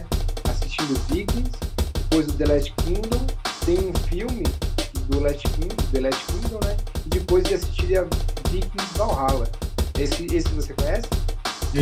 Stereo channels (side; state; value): both; identical; correlation 1.00